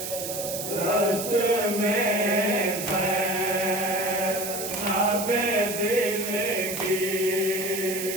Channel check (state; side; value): noise; right; hiss, 6 dB below the sound